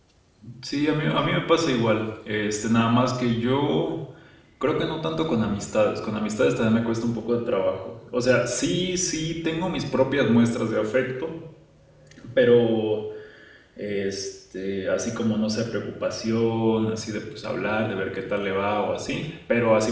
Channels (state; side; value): identical; both; correlation 1.00